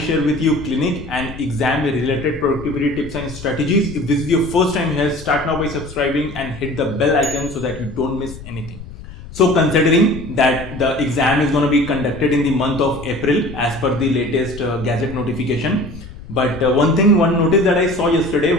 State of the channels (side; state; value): left; noise; rumble, 15 dB below the sound